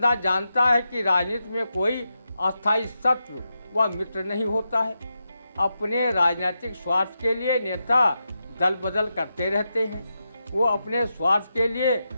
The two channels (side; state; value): both; inverted; correlation -0.87